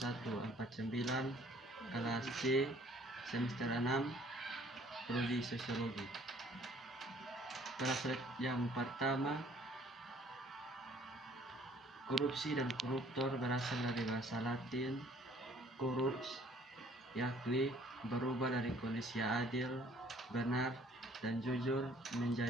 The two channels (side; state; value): both; normal; correlation 0.58